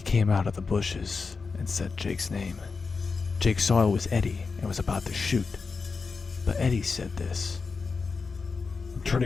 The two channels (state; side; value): quieter; right; 4.7 dB